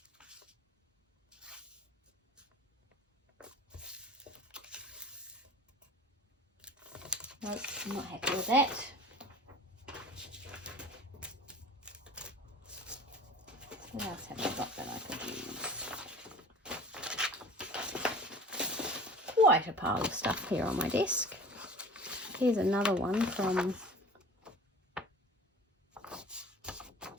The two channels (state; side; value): normal; both; correlation 0.41